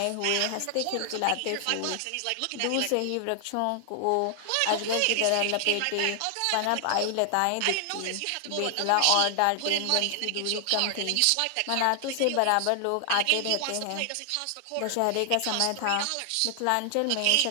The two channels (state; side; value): different; both; correlation 0.00